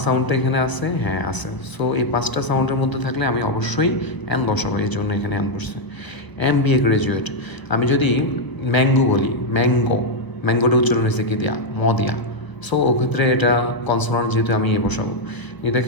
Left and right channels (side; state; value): right; late; 1.0 ms